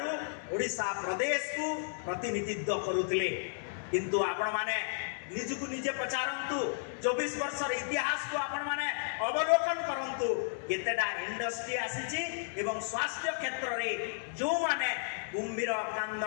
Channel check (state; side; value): silent; right; 56 dB below the other